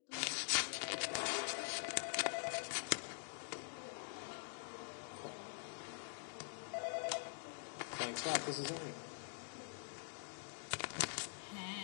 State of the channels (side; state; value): right; silent; digital silence